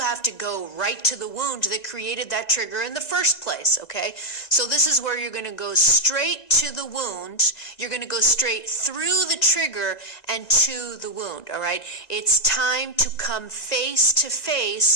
to go right to the wound that created that trigger in the first place, okay? So this is where you're going to go straight to the wound. You're going to go straight through the trigger and to the wound, all right? It's time to come face to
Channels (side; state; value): right; late; 2.0 ms